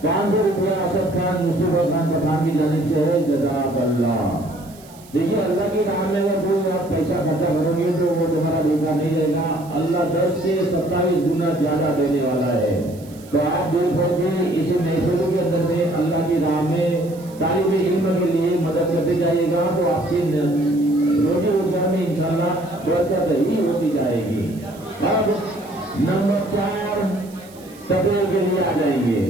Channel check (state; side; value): noise; right; hiss, 24 dB below the sound